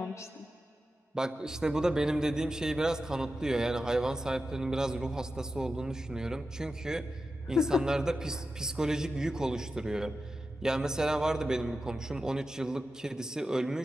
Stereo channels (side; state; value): both; normal; correlation 0.91